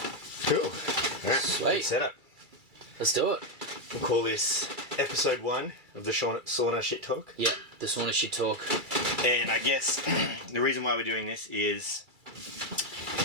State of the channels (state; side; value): late; left; 2.3 ms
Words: Cool. Alright, Sweet. good setup. Let's do it. We'll call this episode 1 of the sauna shit talk. Yeah, the sauna shit talk. And I guess the reason why we're doing this is,